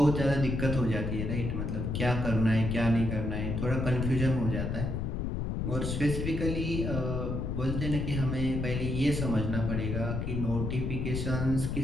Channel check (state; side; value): noise; left; rumble, 2 dB below the sound